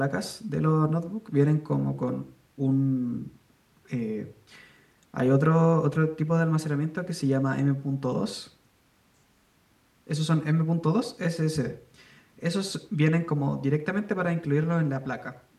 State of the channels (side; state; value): both; identical; correlation 1.00